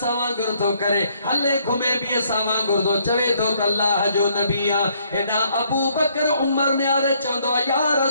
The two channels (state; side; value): inverted; both; correlation -0.68